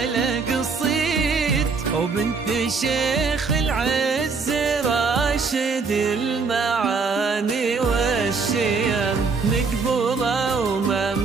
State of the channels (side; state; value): left; quieter; 4.7 dB